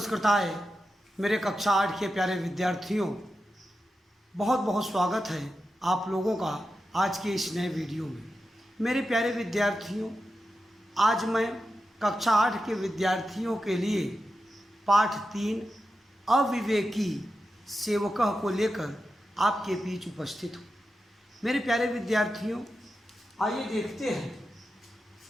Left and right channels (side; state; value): both; normal; correlation 0.90